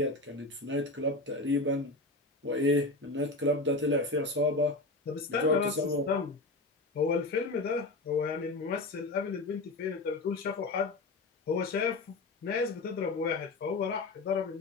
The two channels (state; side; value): quieter; right; 3.1 dB